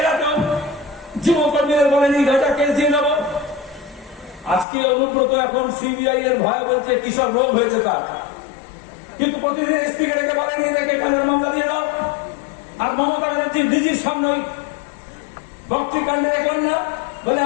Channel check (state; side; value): drops out; right; at 4.7 s